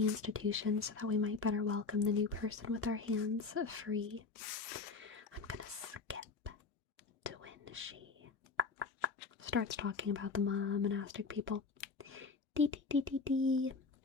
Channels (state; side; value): quieter; right; 4.4 dB